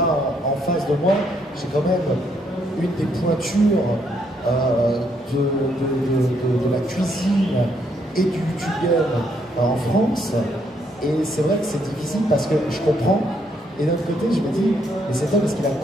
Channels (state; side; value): normal; both; correlation 0.73